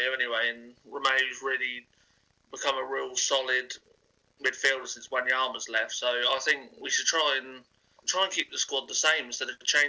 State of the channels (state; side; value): identical; both; correlation 1.00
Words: anyway, and Romeu's really become a real solid midfielder since Wanyama's left. So I think we should try and keep the squad the same instead of